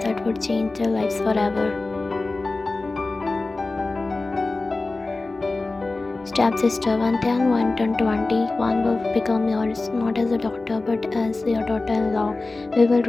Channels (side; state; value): right; quieter; 3.3 dB